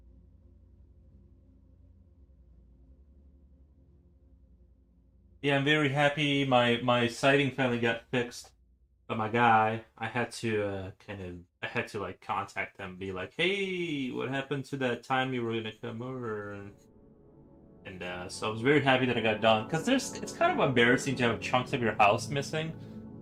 Yeah, I'm very happy. My sighting finally got fixed. But my guy, I had to I had to like contact them, be like, "Hey, what happened to that time you were gonna come over?" And so I was very happy that I got done because it's kind of embarrassing to have chunks of your house missing.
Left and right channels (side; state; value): both; identical; correlation 1.00